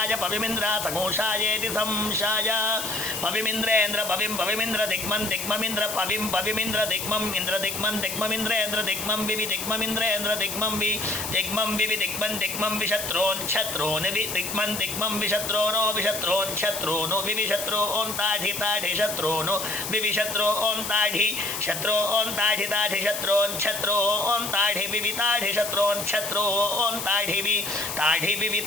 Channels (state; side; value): noise; left; hiss, 5 dB below the sound